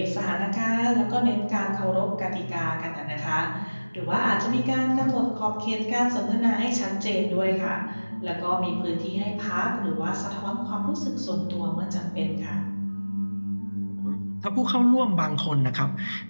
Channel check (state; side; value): inverted; both; correlation -1.00